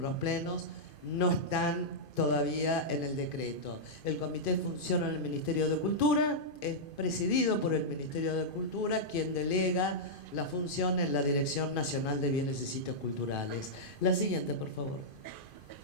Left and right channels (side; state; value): right; late; 2.5 ms